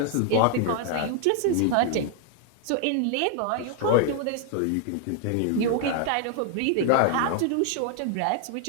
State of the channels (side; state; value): both; different; correlation 0.00